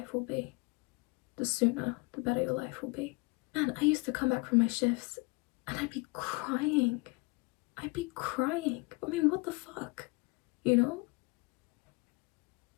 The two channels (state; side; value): quieter; right; 27.1 dB